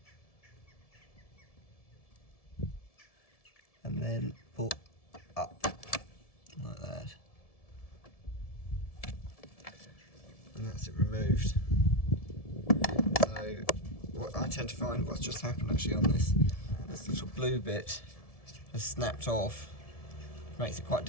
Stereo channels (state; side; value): late; right; 1.7 ms